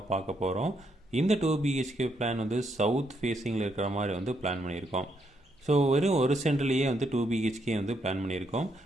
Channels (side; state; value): both; normal; correlation 0.76